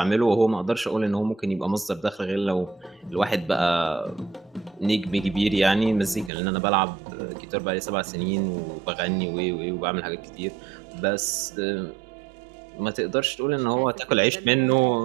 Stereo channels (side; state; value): left; drops out; at 6.3 s